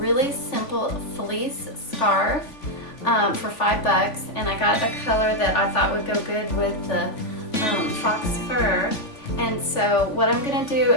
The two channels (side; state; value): right; late; 3.5 ms